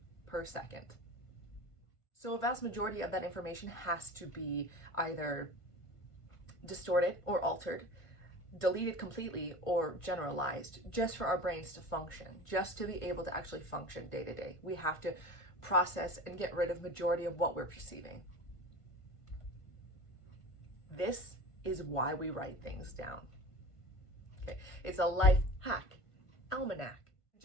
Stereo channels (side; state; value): right; late; 1.5 ms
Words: per second. So a vast majority of that information has to be either distorted or altered, deleted completely, or generalized, just for our brains to function, just to be able to actually function day to day. We have to process and get rid of majority of what we're perceiving. This is why we write things down. Okay, it's a life hack, almanac.